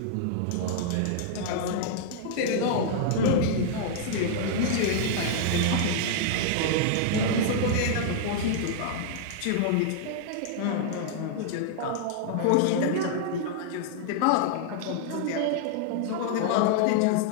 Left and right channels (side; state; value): both; different; correlation -0.01